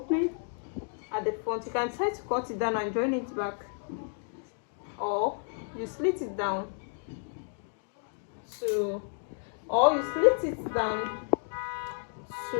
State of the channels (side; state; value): right; silent; 57 dB below the other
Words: at the front. You can try to cut it down and join it back, or you slit it down to,